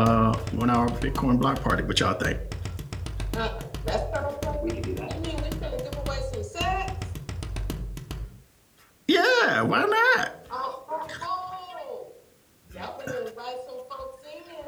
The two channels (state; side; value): identical; both; correlation 1.00